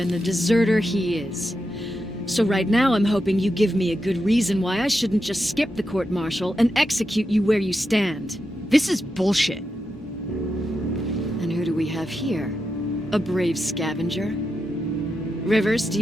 the deserter he is? So right now I'm hoping you give me a good reason why I shouldn't just skip the court-martial and execute you where you stand. This is bullshit. And who do we have here? A brave scavenger? Rivers, do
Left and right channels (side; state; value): both; normal; correlation 0.87